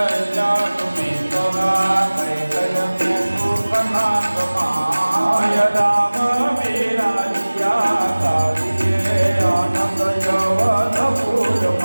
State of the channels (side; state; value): both; inverted; correlation -1.00